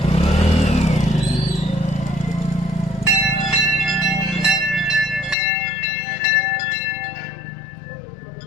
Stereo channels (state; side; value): drops out; right; at 5.4 s